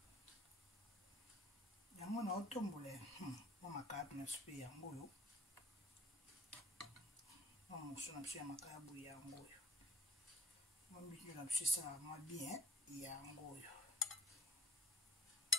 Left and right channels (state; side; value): normal; both; correlation 0.49